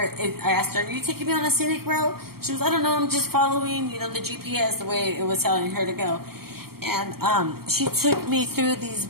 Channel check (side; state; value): left; late; 0.94 ms